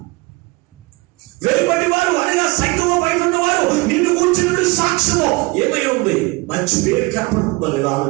వెలుపటి వారు అనగా సంఘము బయట ఉన్నవారు నిన్ను కూర్చున్న సాక్ష్యము ఏమై ఉంది? మంచి పేరు కనపడుతుందా లేదా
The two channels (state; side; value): quieter; left; 24.4 dB